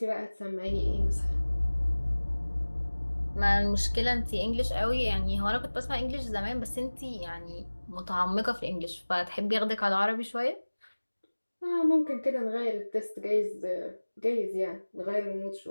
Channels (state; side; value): inverted; both; correlation -1.00